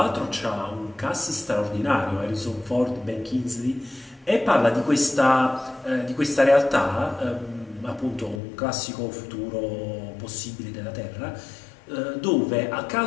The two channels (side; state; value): right; drops out; at 8.4 s